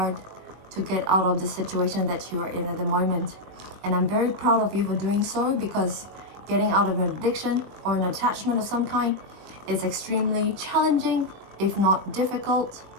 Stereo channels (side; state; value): left; late; 21 ms